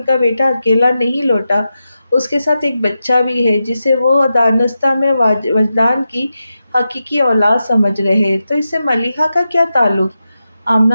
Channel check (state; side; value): inverted; both; correlation -0.90